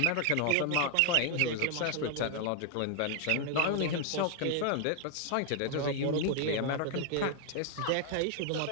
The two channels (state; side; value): different; both; correlation 0.00